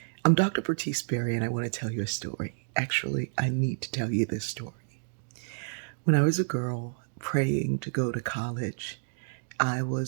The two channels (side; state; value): left; silent; digital silence